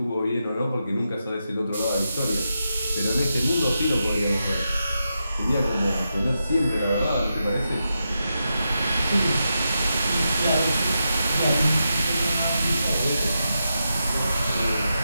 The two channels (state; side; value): inverted; both; correlation -0.87